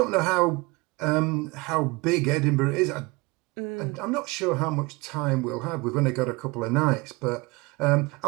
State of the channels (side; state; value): left; quieter; 24.9 dB